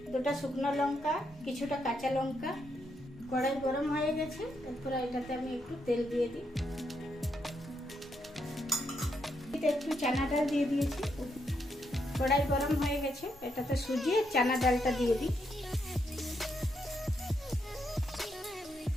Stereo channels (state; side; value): normal; both; correlation 0.79